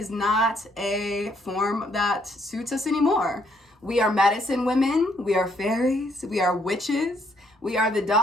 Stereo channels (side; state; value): both; normal; correlation 0.70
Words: not a form that suits us anymore. We are medicine women. We are fairies. We are witches. We are the